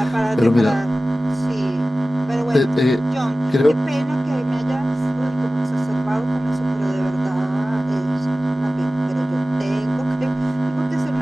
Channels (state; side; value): normal; both; correlation 0.96